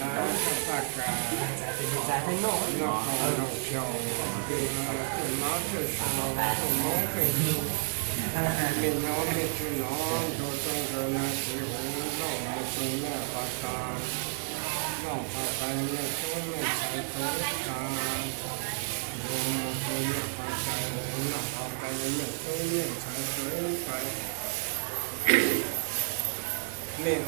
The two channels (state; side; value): silent; left; 56 dB below the other